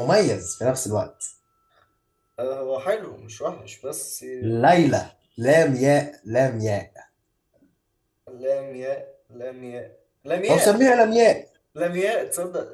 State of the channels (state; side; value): identical; both; correlation 1.00